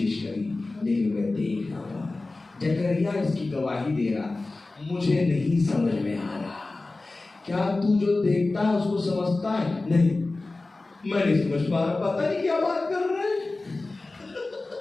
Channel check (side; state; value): right; quieter; 3.2 dB